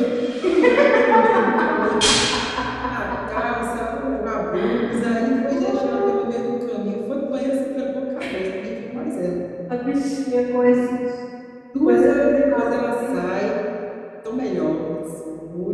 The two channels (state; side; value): identical; both; correlation 1.00